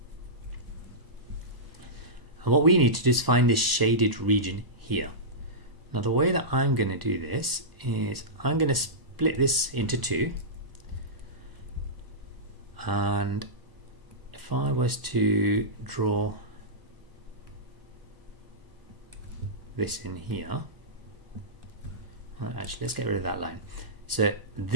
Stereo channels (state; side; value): late; left; 1.0 ms